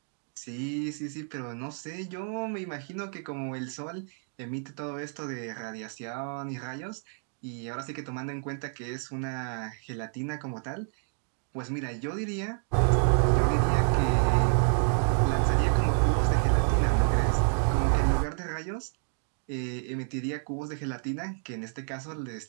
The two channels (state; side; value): silent; left; 56 dB below the other